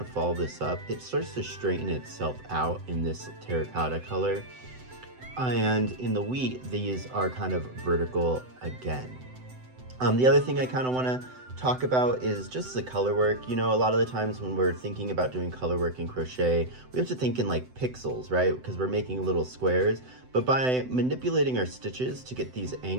follow this up, it starts to straighten itself out in this terracotta color. And in the wheat, these are kind of vertical again. The other thing I kind of want to talk about is just the color work. You know, a lot of the times when we're thinking about doing color work in crochet, we have to think in like pixels, right? Because we're making little squares. But by manipulating our stitches to get these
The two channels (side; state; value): left; late; 7.9 ms